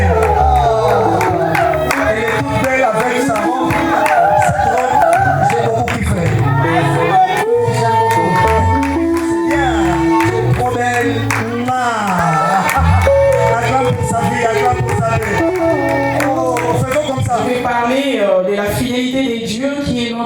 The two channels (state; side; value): identical; both; correlation 1.00